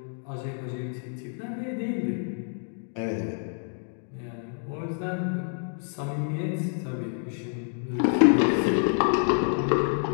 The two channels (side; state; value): right; silent; 59 dB below the other